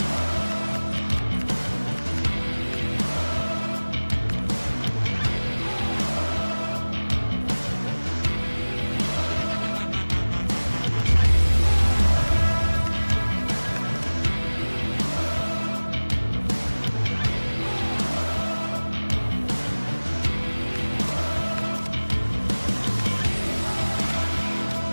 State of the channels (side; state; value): both; inverted; correlation -1.00